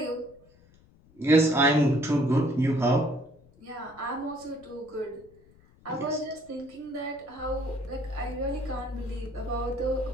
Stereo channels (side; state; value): left; noise; rumble, 28 dB below the sound